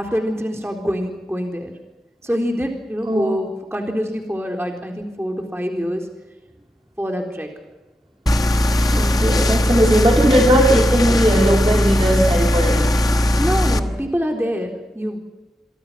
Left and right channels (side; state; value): both; normal; correlation 0.86